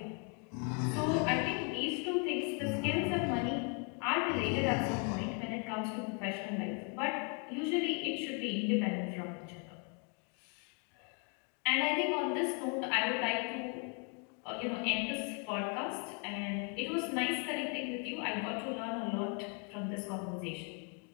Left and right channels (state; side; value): quieter; right; 37.1 dB